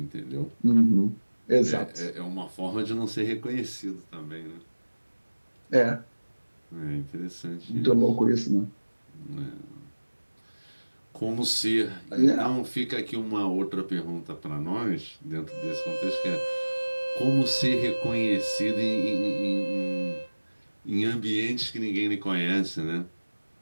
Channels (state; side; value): inverted; both; correlation -1.00